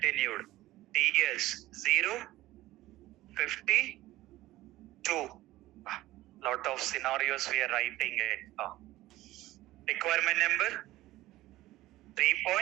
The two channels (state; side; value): quieter; left; 16.8 dB